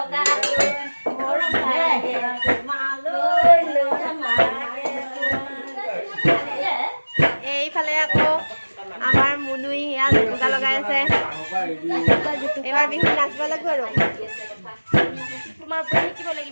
এইফালে আকৌ আমাৰ মুনুই সেয়া জুপুকা লগাই আছে এইবাৰ বিহু নাচিব লাগিব আৰু তোমাৰ পৰা শিকিব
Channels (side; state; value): both; inverted; correlation -1.00